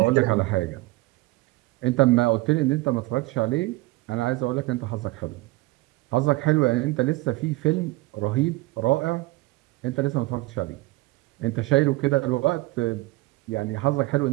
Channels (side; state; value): left; quieter; 20.1 dB